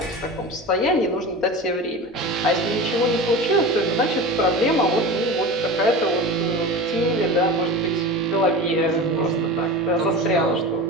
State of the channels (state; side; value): normal; both; correlation 0.31